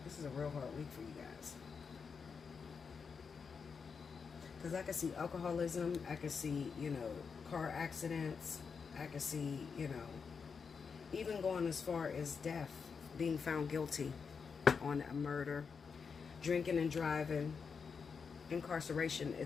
This is a real hard week for you guys. Because I can see alcoholism, I can see, car accidents, I can see, even going as far as death, being found guilty. on a murder, drinking and driving, incarceration.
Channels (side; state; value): right; quieter; 5.7 dB